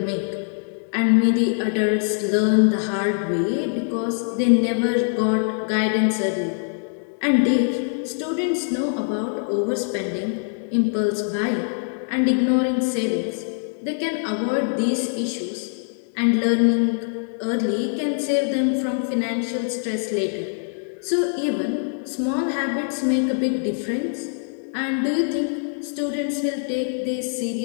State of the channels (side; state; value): right; silent; digital silence